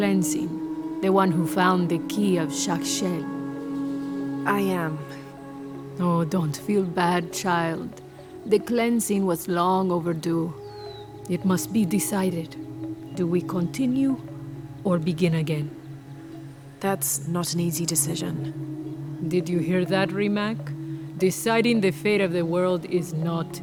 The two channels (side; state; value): both; identical; correlation 1.00